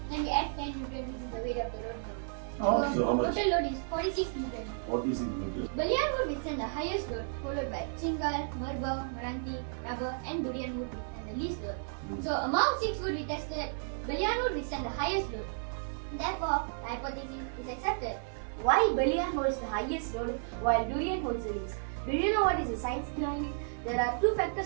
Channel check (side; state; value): left; silent; 56 dB below the other